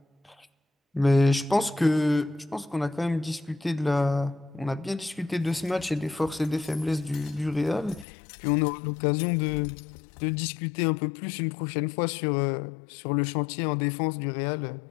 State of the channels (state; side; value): drops out; right; at 8.1 s